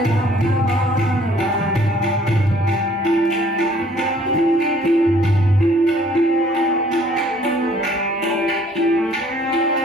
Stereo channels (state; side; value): normal; both; correlation 0.58